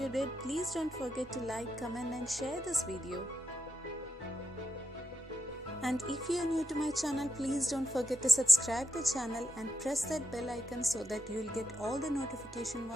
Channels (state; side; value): normal; both; correlation 0.85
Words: did, please don't forget to like, comment and share this video. And if you are new to my channel, please don't forget to subscribe the channel and press that bell icon so that you'll get all the notification